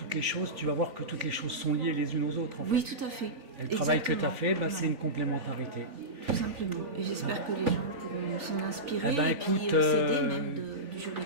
les choses, tu vas voir que toutes les choses sont liées les unes aux autres. En Oui, fait. tout à fait. Et le travail que tu as fait, Exactement. c'est une complémentarité. Tout simplement. Et j'espère que les gens pourront s'en inspirer Eh ben, et puis écoute, s'aider même du juridique.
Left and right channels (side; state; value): left; late; 3.5 ms